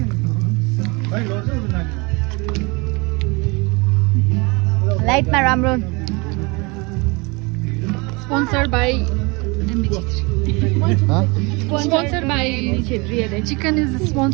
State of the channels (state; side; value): quieter; left; 27.4 dB